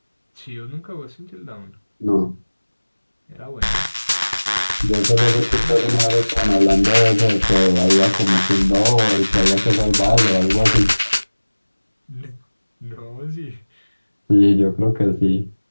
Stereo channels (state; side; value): inverted; both; correlation -1.00